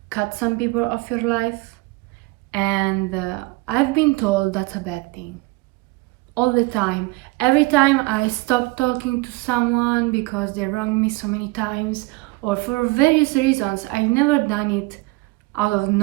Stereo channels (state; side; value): quieter; left; 23.4 dB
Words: cut some people off your life, and I've been told that's a bad thing. All the time. Every time I stop talking to someone because they wronged me so many times, or for various reasons, I never done it out of